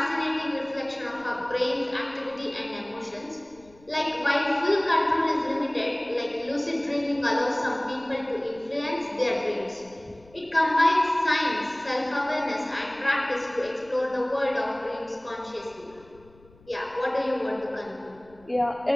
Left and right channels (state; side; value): noise; left; rumble, 27 dB below the sound